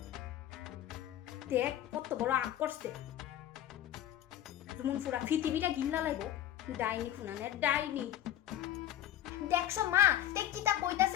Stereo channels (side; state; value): right; quieter; 11.9 dB